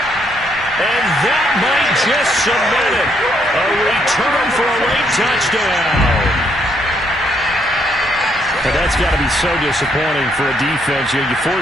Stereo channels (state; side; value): normal; both; correlation 0.72